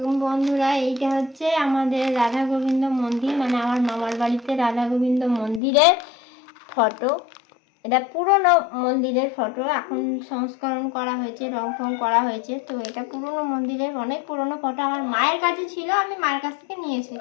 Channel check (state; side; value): drops out; right; at 5.6 s